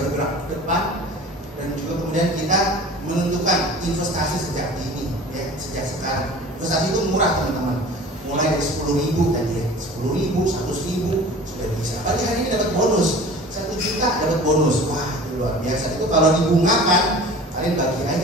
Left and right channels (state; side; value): normal; both; correlation 0.42